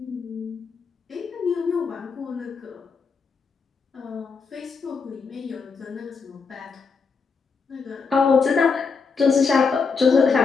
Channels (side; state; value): right; quieter; 5.1 dB